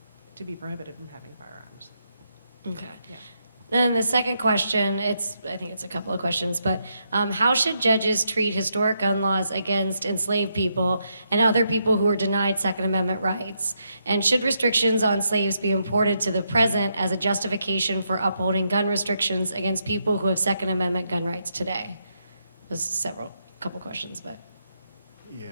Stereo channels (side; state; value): both; inverted; correlation -0.79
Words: to be prohibited from having firearms. Okay. Yeah. Then the second question, I think it's a couple of questions, but how should judges treat historic gun laws against enslaved people and other people who are denied Second Amendment rights? And should restrictions on slaves be imported to the present as a justification for upholding gun restrictions against people who have Second Amendment gun rights today? There's couple questions, but. Yeah,